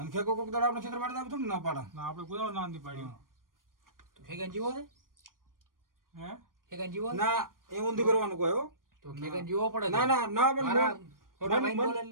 ખેગો કોક દાડા આપણે ક્ષેત્ર પાડતા આપણે થોડું ના પાડા ના આપણે કોઈ ના નથી પાડ્યું તો ખેગન જીવો છે હે ખેગન જીવો ના એ ઊંધી કરવાનું કોઈ હો તો ખેગન જીવો પડે ના ના ના મારા મોટા ભાઈ બોલે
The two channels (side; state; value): left; late; 0.91 ms